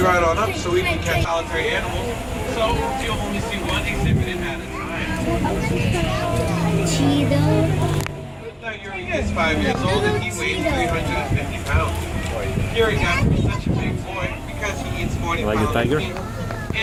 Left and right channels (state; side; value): identical; both; correlation 1.00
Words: right on up so we can catch solitary animals, so you'll only see one exhibit at a time. Now Yuri is 5 years old and he weighs 350 pounds. Yuri got to be such a big boy because he eats 40 Like a pounds tiger? of meat